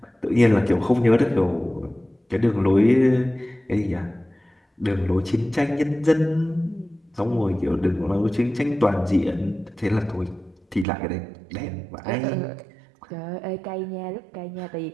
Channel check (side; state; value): left; drops out; at 10.9 s